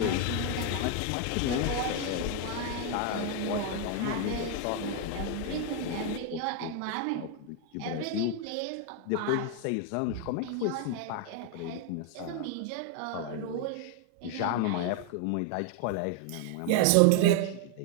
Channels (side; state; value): both; different; correlation 0.00